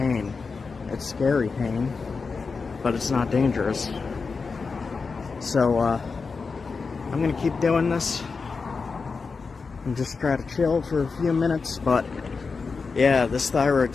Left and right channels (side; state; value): right; quieter; 4.7 dB